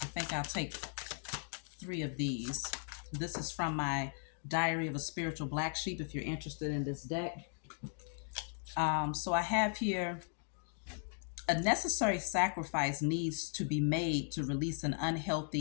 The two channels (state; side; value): silent; right; 53 dB below the other